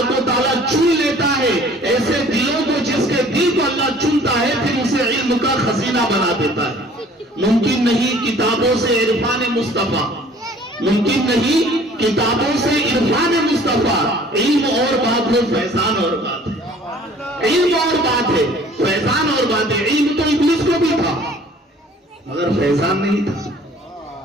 و تعالیٰ چن لیتا ہے ایسے دلوں کو، جس کے دل کو اللہ چنتا ہے پھر اسے علم کا خزینہ بنا دیتا ہے۔ ممکن نہیں کتابوں سے عرفان مصطفیٰ، ممکن نہیں کتابوں سے عرفان مصطفیٰ، علم اور بات ہے، فیضان اور بات ہے۔ علم اور بات ہے، فیضان اور بات ہے۔ علم تو ابلیس کو بھی تھا مگر فیضان نہیں تھا،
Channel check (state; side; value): normal; both; correlation 0.52